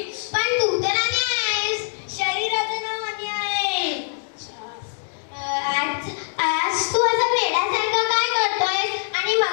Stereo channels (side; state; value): right; silent; digital silence